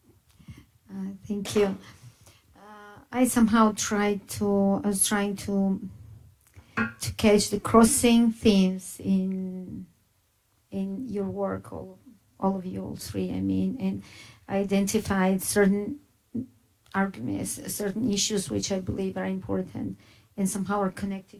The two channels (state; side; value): identical; both; correlation 1.00